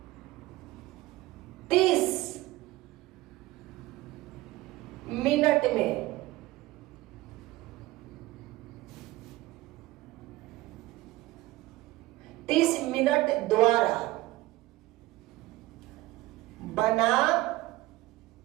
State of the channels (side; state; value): left; quieter; 18.3 dB